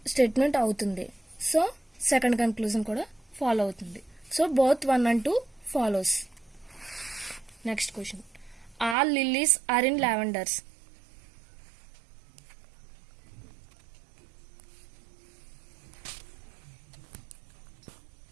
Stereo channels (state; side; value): drops out; left; at 9.0 s